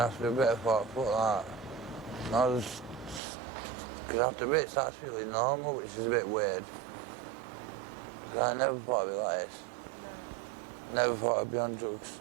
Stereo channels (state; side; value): drops out; left; at 3.2 s